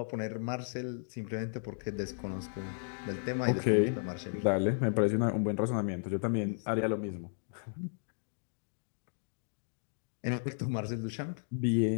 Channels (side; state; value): right; silent; digital silence